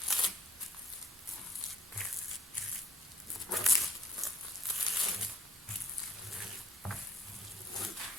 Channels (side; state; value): both; normal; correlation 0.60